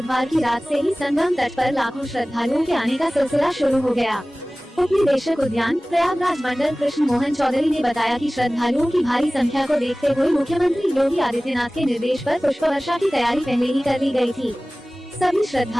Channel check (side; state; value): both; normal; correlation 0.98